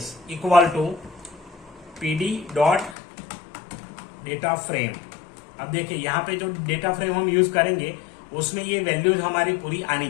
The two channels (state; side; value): drops out; right; at 3.0 s